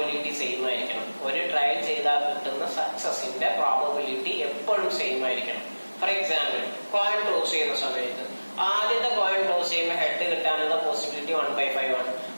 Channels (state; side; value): inverted; both; correlation -1.00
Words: സെയിം ആയിരിക്കണം. ഒരു ട്രയൽ ചെയ്താൽ കിട്ടുന്ന സക്സസിന്റെ പ്രോബബിലിറ്റി എപ്പോഴും സെയിം ആയിരിക്കണം. ഫോർ എക്സാമ്പിൾ, കോയിൻ ടോസ് ചെയ്യുന്ന സമയത്ത് ആദ്യത്തെ കോയിൻ ടോസ് ചെയ്യുമ്പോൾ ഹെഡ് കിട്ടാനുള്ള പോസിബിലിറ്റി 1/5 ആണ്.